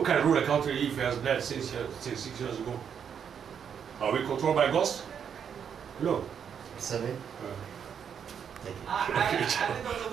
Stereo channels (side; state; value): left; quieter; 7.7 dB